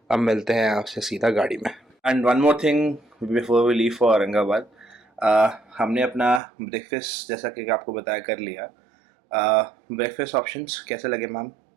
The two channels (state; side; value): drops out; left; at 6.4 s